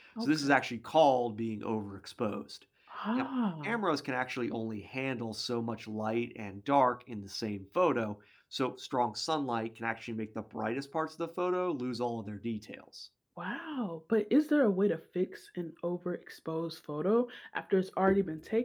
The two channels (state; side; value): identical; both; correlation 1.00